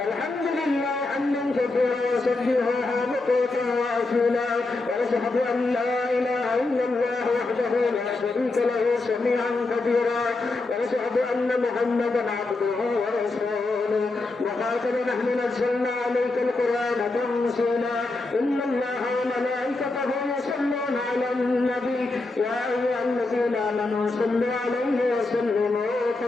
الحمد لله حمدا كثيرا وسبحه بكرة وأصيلا ونشهد أن لا إله إلا الله وحده لا شريك له سميعا كبيرا ونشهد أن محمدا عبده ورسوله وخاتم نحن نزلنا عليك القرآن تنزيلا إن الله وملائكته يصلون على النبي يا أيها الذين آمنوا صلوا عليه وسلموا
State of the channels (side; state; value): right; quieter; 3.3 dB